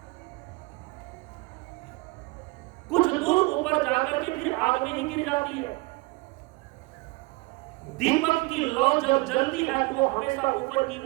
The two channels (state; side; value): quieter; left; 24.8 dB